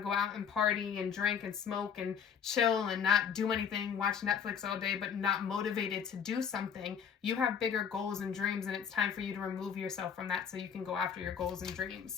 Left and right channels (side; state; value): right; quieter; 7.5 dB